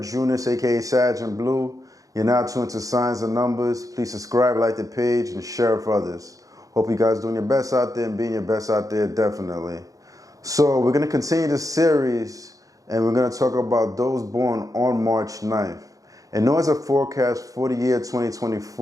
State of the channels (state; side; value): late; left; 0.17 ms